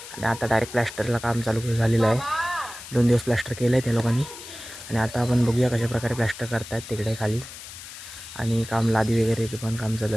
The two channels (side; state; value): left; noise; hiss, 13 dB below the sound